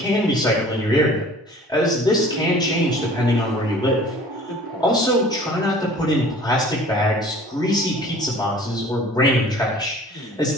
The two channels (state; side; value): normal; both; correlation 0.47